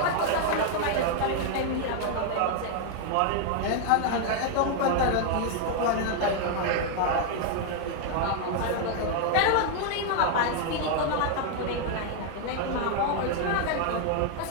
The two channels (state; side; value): different; both; correlation 0.00